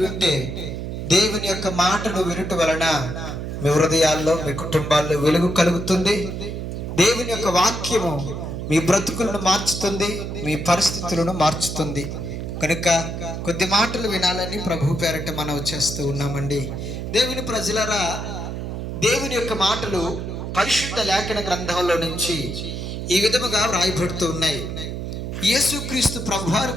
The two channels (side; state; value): right; noise; hum, 5 dB below the sound